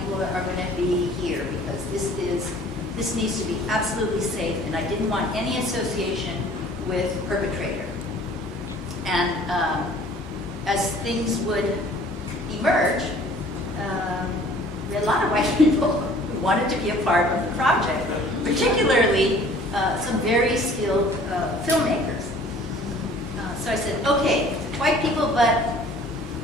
are gonna be here because this needs to be absolutely safe, and I didn't want any association with perpetrator. And as things would emerge, we had a lot of white people who wanted to be a part of the project, particularly some very skilled filmmakers. So I said, okay, white people, but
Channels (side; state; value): both; normal; correlation 0.52